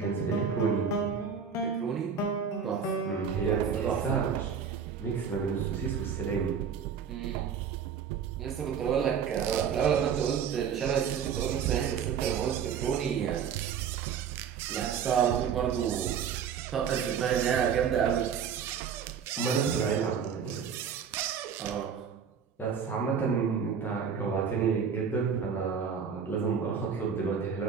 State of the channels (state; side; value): quieter; left; 7.1 dB